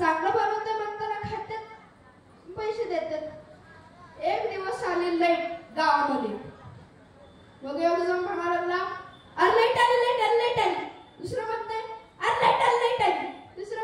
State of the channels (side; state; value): both; identical; correlation 1.00